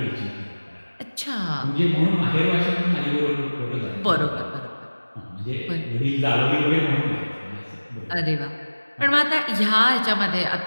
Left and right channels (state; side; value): inverted; both; correlation -1.00